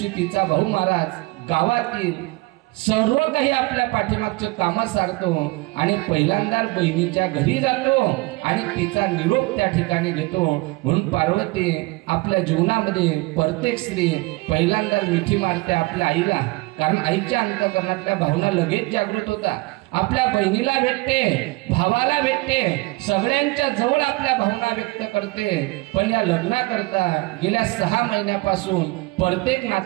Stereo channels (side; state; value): left; quieter; 23.8 dB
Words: तिचा भाऊ महाराज गावातील सर्व काही आपल्या पाठीमागचं काम सारतो आणि पहिल्यांदा बहिणीच्या घरी जातो आणि तिचा निरोप त्या ठिकाणी घेतो. म्हणून पार्वती आपल्या जीवनामध्ये प्रत्येक स्त्री पहिल्यांदा मिठी मारते आपल्या आईला, कारण आईच्या अंतःकरणातल्या भावना लगेच जागृत होता. आपल्या बहिणीला भेटते, भावाला भेटते, सगळ्यांच्या जवळ आपल्या भावना व्यक्त करते. पण या लग्नाकरता गेल्या 6 महिन्यापासून प्रत्येक